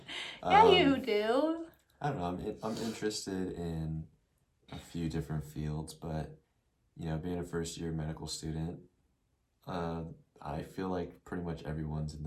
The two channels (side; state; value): both; identical; correlation 1.00